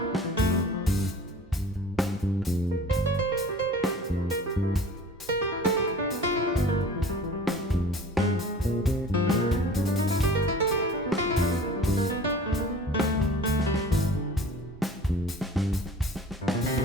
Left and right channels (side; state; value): both; normal; correlation 0.43